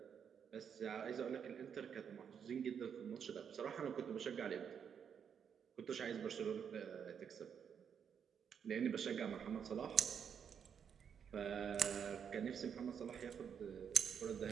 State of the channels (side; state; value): left; quieter; 7.5 dB